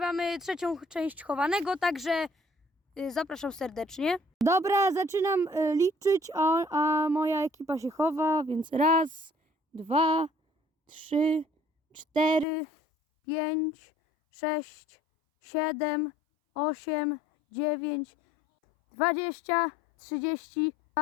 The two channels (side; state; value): right; drops out; at 12.5 s